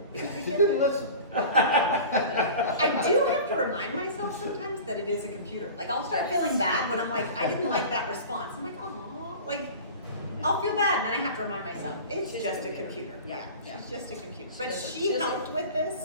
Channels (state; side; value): inverted; both; correlation -0.37